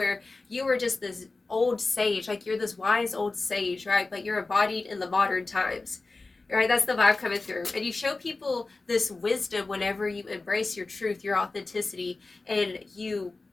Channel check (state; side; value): quieter; right; 3.5 dB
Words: you were just this old sage, like you're this wise old sage, right? But you're embodied in the modern times, right? That's the vibe coming through. And you show people this wisdom whenever you embrace your truth, your authenticity, and you